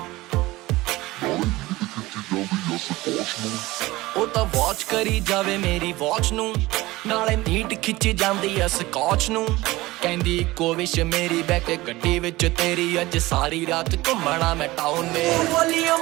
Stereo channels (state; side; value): quieter; left; 19.3 dB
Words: ਉਹ ਤਾਂ ਵਾਚ ਕਰੀ ਜਾਵੇ ਮੇਰੀ ਵਾਚ ਨੂੰ, ਨਾਲੇ ਨੀਟ ਖਿੱਚੀ ਜਾਂਦੀ ਐ ਸਕਾਚ ਨੂੰ। ਕਹਿੰਦੀ ਇੱਕੋ ਵਿਸ਼ ਮੇਰੀ ਬੈਕ ਗੱਡੀ ਵਿੱਚ ਤੇਰੀ, ਅੱਜ ਸਾਰੀ ਰਾਤ ਘੁੰਮਣਾ ਮੈਂ ਟਾਊਨ ਮੇ।